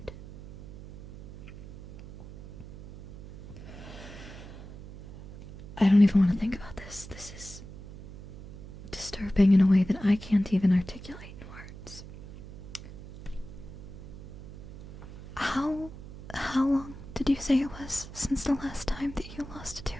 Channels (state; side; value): noise; right; hum, 15 dB below the sound